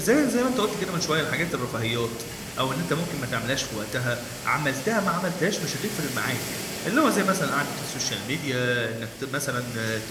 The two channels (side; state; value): both; identical; correlation 1.00